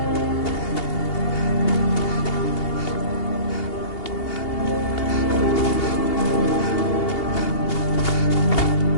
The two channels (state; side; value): late; right; 2.8 ms